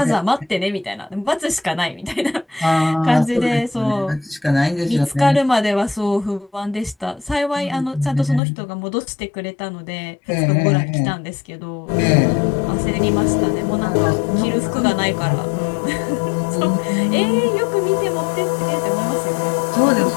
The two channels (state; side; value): drops out; right; at 8.4 s